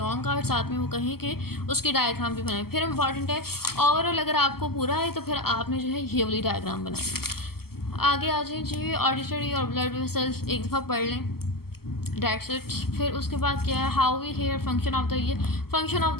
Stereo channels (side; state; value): right; late; 0.95 ms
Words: और साथ में वो कहें कि उसकी डायग्राम भी बनाए, फिर इम्पॉर्टेंट है। ओवरऑल अगर आपको पूरा है तो फिर आपने जो है ये वाली डायग्राम बनानी। आगे आ जाए जी ऑडिटरी और ब्लड वेसल्स एक दफ़ा पढ़ लें, डेट्स इट। फिर उसके बाद क्या है, how we hear, function of the ear, function of